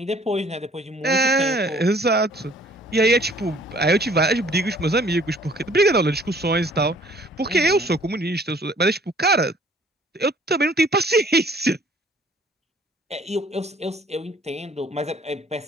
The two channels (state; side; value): normal; both; correlation 0.57